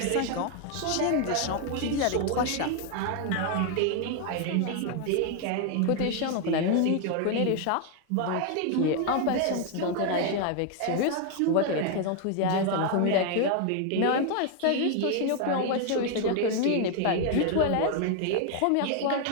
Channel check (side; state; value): both; different; correlation 0.00